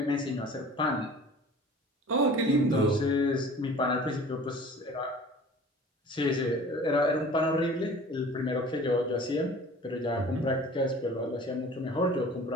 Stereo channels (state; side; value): normal; both; correlation 0.44